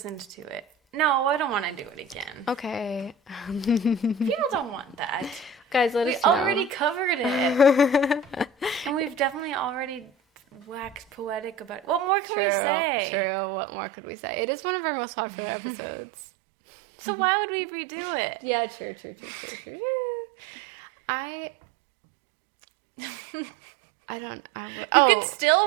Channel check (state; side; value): drops out; left; at 12.1 s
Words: to it. No, I don't want to do it again. Okay. People don't want that. Guys, let us know. We already covered it. And we've definitely already waxed poetic about it. What more can we say? True. What more could we say? It is one of our most popular episodes. So why would we redo it? Yeah, true. You can